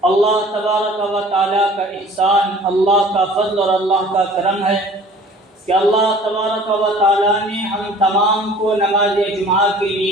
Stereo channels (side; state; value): both; normal; correlation 0.48